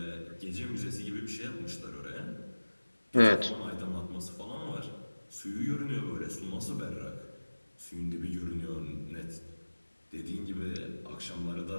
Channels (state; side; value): inverted; both; correlation -1.00